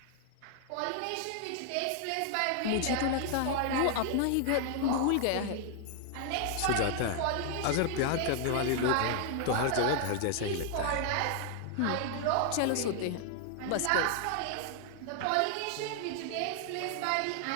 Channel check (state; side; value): different; both; correlation 0.00